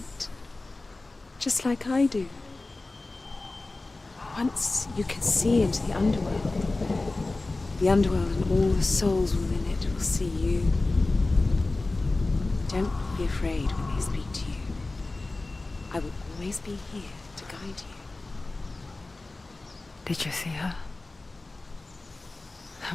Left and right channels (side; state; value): right; quieter; 3.2 dB